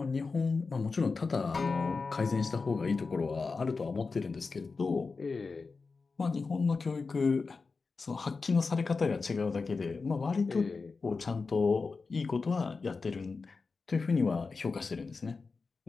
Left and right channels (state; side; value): quieter; right; 4.4 dB